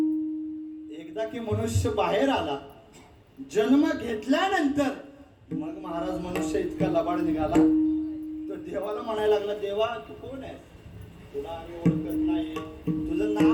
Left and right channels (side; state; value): both; identical; correlation 1.00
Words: एकदा की मनुष्य बाहेर आला, जन्म घेतल्यानंतर मग महाराज मनुष्य इतका लबाड निघाला, तो देवाला म्हणायला लागला, देवा तू कोण आहे, तुला आम्ही ओळखत नाही, तुझं